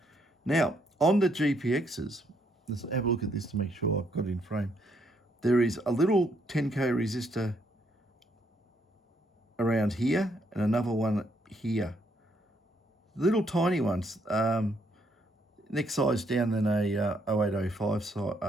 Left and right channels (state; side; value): normal; both; correlation 0.72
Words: Now, on the GPXs, let's have a look at this to make sure I've got it in frame. There is a little 10K resistor around here and another one here. Little tiny ones, next size down than a 0805